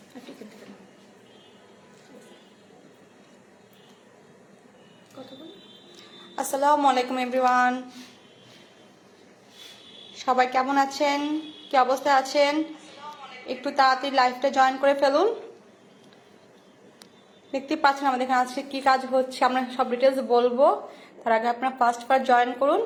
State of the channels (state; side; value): identical; both; correlation 1.00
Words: আলাইকুম এভরিওয়ান, সবাই কেমন আছেন, কি অবস্থায় আছেন? একটু তাড়াতাড়ি লাইভটা জয়েন করে ফেলুন। দেখতে পাচ্ছেন আমাদের এখানে আজকে কি কাজ হচ্ছে, আমরা সব ডিটেলস বলবো। তার আগে আপনারা ফার্স্ট জয়েন করুন।